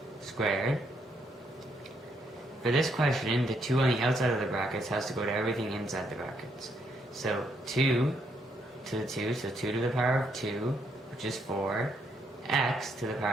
squared. For this question, the 2 on the outside of the brackets has to go to everything inside the brackets. So 2 to the 2, so 2 to the power of 2, which is 4, x to the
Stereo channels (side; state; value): both; normal; correlation 0.74